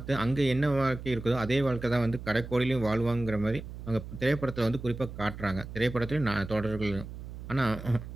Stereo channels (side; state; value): right; noise; hum, 11 dB below the sound